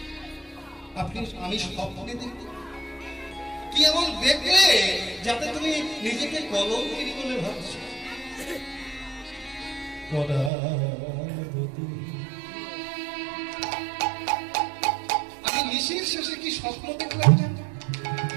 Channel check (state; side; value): drops out; left; at 10.5 s